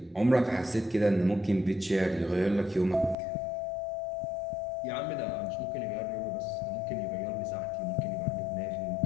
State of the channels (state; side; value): drops out; right; at 3.2 s